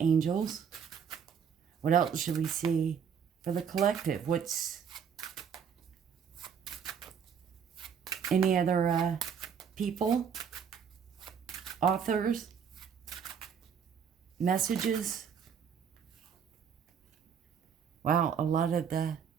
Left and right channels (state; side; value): quieter; left; 7.3 dB